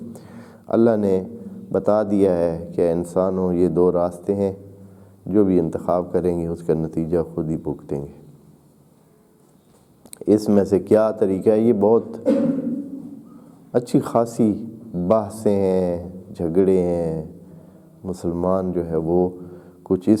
اللہ نے بتا دیا ہے کہ انسانوں یہ دو راستے ہیں، جو بھی انتخاب کریں گے اس کا نتیجہ خود ہی بھگتیں گے۔ اس میں سے کیا طریقہ ہے، یہ بہت اچھی خاصی بحثیں ہیں، جھگڑے ہیں۔ مسلمان جو ہے وہ کچھ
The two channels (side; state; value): both; identical; correlation 1.00